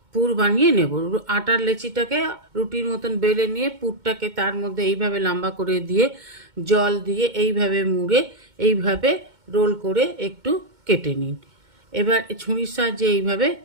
পুর বানিয়ে নেব। আটার লেচিটাকে রুটির মতন বেলে নিয়ে পুরটাকে তার মধ্যে এইভাবে লম্বা করে দিয়ে জল দিয়ে এইভাবে মুড়ে এইভাবে রোল করে একটু কেটে নিন। এবার ছুরির সাহায্যে এইভাবে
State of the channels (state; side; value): late; left; 2.2 ms